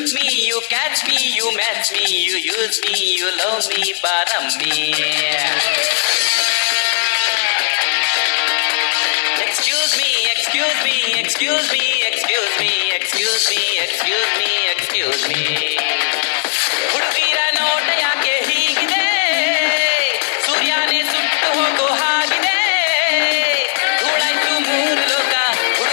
me, you catch me, you match me, you use me, you love me, baram me. Excuse me, excuse me, excuse me, excuse me, excuse me, excuse me, excuse me. ಹುಡುಗಿರ ನೋಟ ಯಾಕೆ ಹೀಗಿದೆ, ಸೂರ್ಯನೇ ಸುಟ್ಟು ಹೋಗೋ ಹಾಗಿದೆ. ಧೂಳಾಯ್ತು ಮೂರು ಲೋಕ,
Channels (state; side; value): silent; right; digital silence